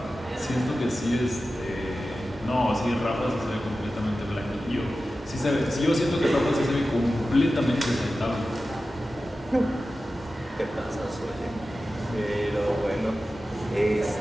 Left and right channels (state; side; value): normal; both; correlation 0.94